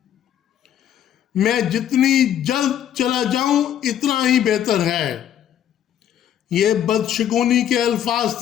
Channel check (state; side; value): quieter; right; 10.3 dB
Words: میں جتنی جلد چلا جاؤں اتنا ہی بہتر ہے۔ یہ بدشگونی کے الفاظ